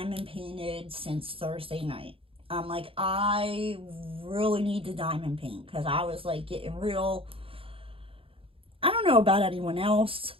painted since Thursday night. I'm like, I really need to diamond paint, because I was like getting real, I don't know about anyone else,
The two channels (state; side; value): late; left; 0.27 ms